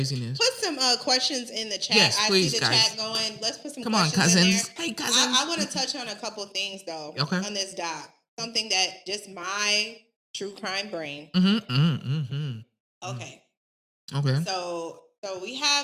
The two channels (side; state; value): both; identical; correlation 1.00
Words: put some questions in the chat. Yes, I see please, the guys. chat going. Let's put some Come on, questions in there. cousins. Hey, cousins. I want to touch on a couple of things though Okay. on this doc. Something that just my true crime brain. Okay. Okay. So we